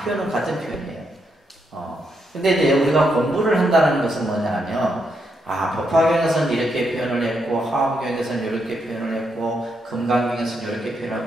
표현은 같은 표현이에요. 근데 이제 우리가 공부를 한다는 것은 뭐냐면 법화경에서는 이렇게 표현을 했고, 화엄경에서는 이렇게 표현을 했고, 금강경에서는 이렇게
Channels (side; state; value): both; normal; correlation 0.80